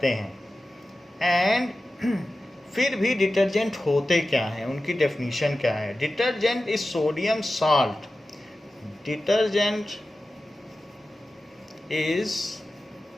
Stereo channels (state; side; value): normal; both; correlation 0.94